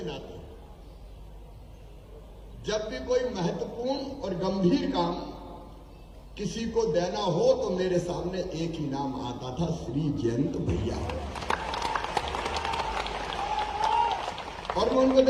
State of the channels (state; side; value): identical; both; correlation 1.00